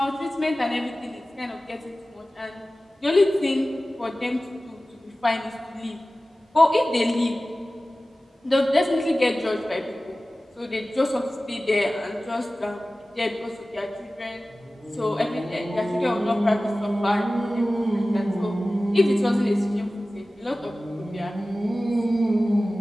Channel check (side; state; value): both; normal; correlation 0.96